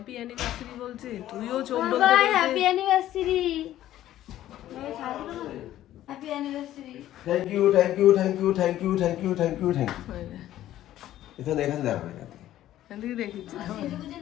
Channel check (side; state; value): right; quieter; 13.2 dB